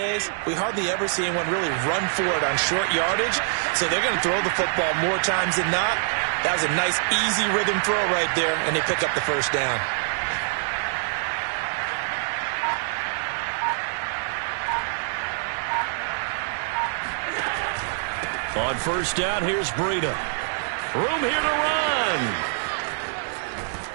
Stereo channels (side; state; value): left; silent; digital silence